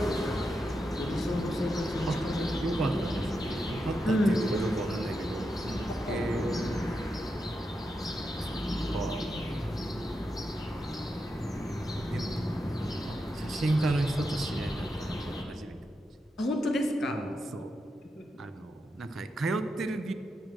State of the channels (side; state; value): both; normal; correlation 0.86